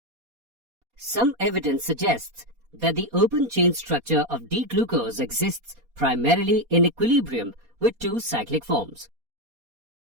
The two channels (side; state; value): left; late; 4.2 ms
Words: Some evidence suggests that the open chain structure of D-glucose exists primarily in equilibrium with 2 cyclic forms.